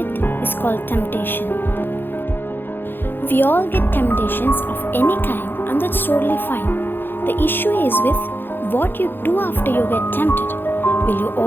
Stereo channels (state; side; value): late; right; 0.10 ms